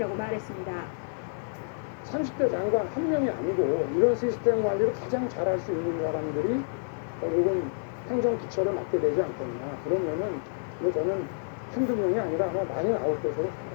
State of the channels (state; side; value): silent; right; 59 dB below the other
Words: 말했습니다. 30대 장관 한 명이 아니고 이런 시스템 관리를 가장 잘할 수 있는 사람들이 결국은 행정 기초를 맡게 되지 않겠나. 그러면은 뭐 저는 한두 명이 아니라 아마 많이 나올 것으로 생각합니다.